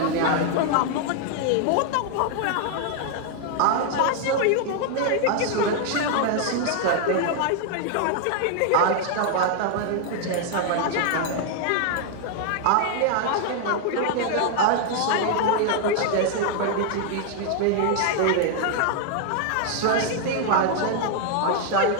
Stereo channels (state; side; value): different; both; correlation 0.00